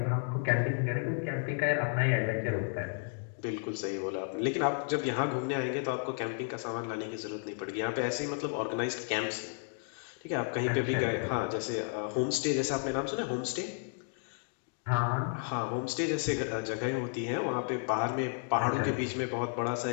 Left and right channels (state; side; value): silent; right; 56 dB below the other